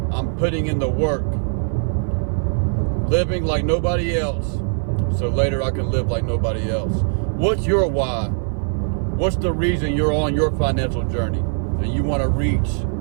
I'm putting in the work, living like nobody else, so later I can live like nobody else. What's your why? What's the reason you're on your financial journey and you want to reach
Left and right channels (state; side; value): silent; left; 57 dB below the other